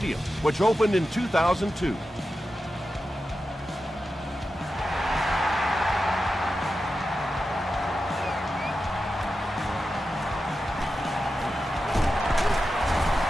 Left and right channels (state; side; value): normal; both; correlation 0.91